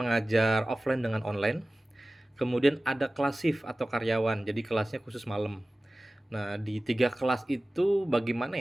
offline dengan online. Kemudian ada kelas shift atau karyawan. Jadi kelasnya khusus malam. Nah, di 3 kelas itu bagaimana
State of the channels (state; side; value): normal; both; correlation 0.97